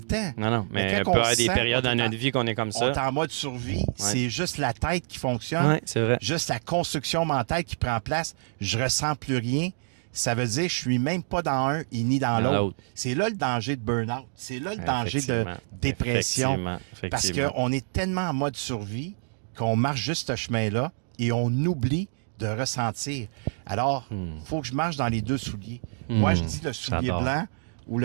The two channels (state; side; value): silent; left; digital silence